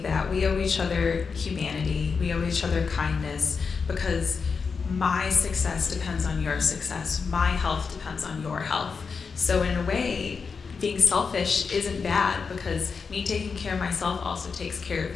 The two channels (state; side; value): quieter; right; 5.3 dB